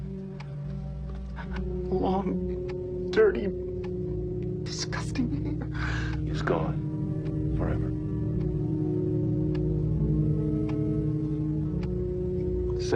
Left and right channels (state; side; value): identical; both; correlation 1.00